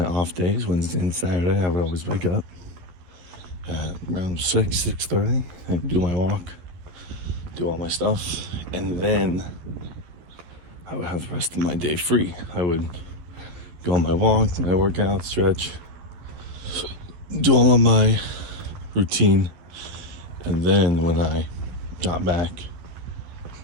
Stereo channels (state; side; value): late; left; 12 ms